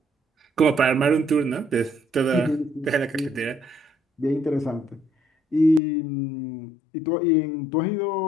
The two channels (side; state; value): right; drops out; at 5.8 s